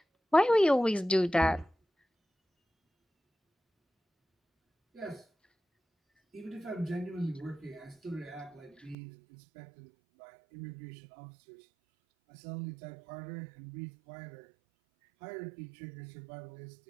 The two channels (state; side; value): drops out; left; at 9.0 s